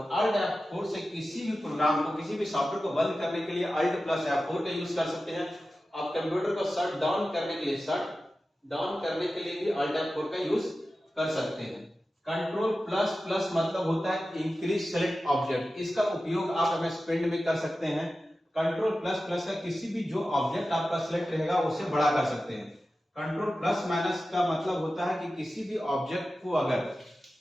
Alt F4 से किसी भी प्रोग्राम को, किसी भी सॉफ्टवेयर को बंद करने के लिए Alt प्लस F4 का यूज कर सकते हैं। आप कंप्यूटर को शट डाउन करने के लिए भी Alt F4 का यूज कर सकते हैं। कंट्रोल प्लस प्लस मतलब होता है इंक्रीज सेलेक्ट ऑब्जेक्ट, इसका उपयोग आप MS पेंट में कर सकते हैं। कंट्रोल प्लस प्लस का किसी भी जो ऑब्जेक्ट आपका सिलेक्ट रहेगा उसे बड़ा कर सकते हैं। कंट्रोल प्लस माइनस का मतलब होता है कि किसी भी ऑब्जेक्ट को अगर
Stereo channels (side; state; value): both; normal; correlation 0.94